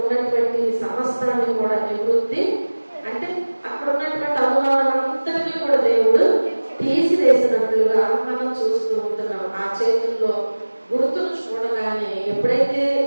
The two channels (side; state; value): both; inverted; correlation -1.00